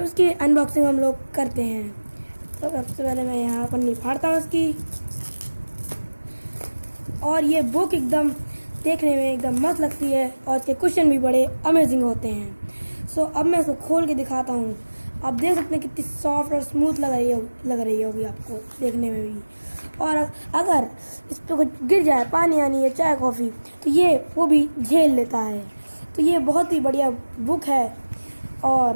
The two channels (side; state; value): both; inverted; correlation -1.00